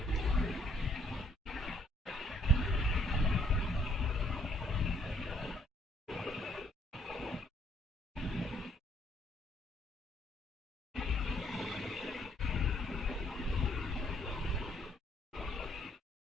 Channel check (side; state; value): both; normal; correlation 0.66